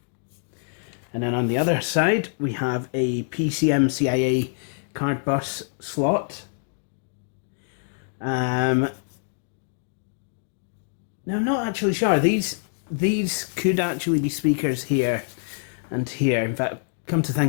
And then on the other side we have a PCM-CIA card bus slot. Now I'm not actually sure. These could actually be speakers here and here. In fact, come to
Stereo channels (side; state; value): right; silent; digital silence